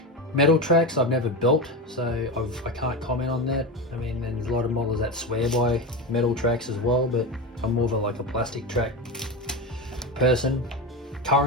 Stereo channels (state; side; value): normal; both; correlation 0.19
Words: Metal tracks I've never built, so I can't comment on that. I mean, there's a lot of modelers that swear by metal tracks as well, but I'm more of like a plastic track person